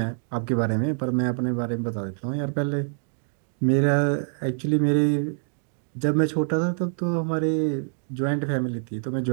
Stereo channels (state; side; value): silent; left; digital silence